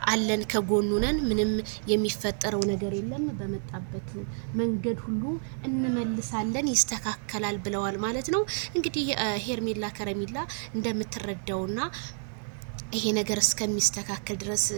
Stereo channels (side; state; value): left; silent; digital silence